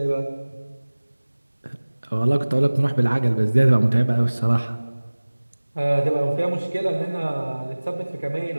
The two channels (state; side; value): inverted; both; correlation -1.00